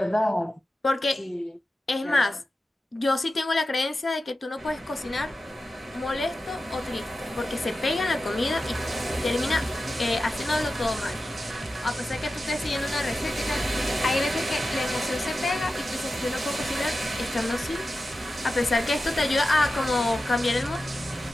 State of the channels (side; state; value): both; normal; correlation 0.93